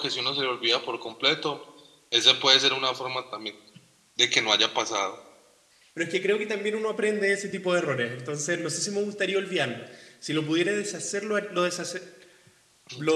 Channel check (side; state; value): both; identical; correlation 1.00